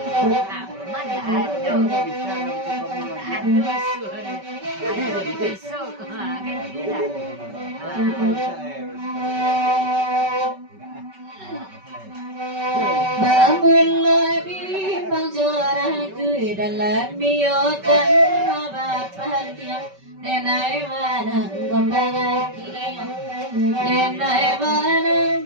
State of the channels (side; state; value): left; late; 5.2 ms